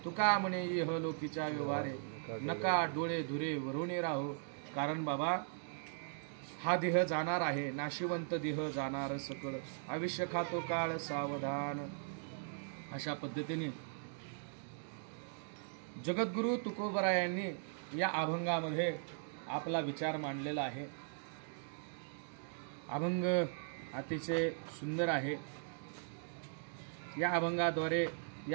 तुका म्हणे इह लोकीच्या व्यवहारे नका डोळे धुरे वरुणे राहो. कारण बाबा हा देह जाणार आहे, नाशिवंत देह जाणार सकळ, आयुष्य खातो काळ सावधान. अशा पद्धतीने जगद्गुरु तुकोबरायांनी या अभंगामध्ये आपला विचार मांडलेला आहे. अभंग अतिशय सुंदर आहे. या अभंगाद्वारे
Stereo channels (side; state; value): left; silent; digital silence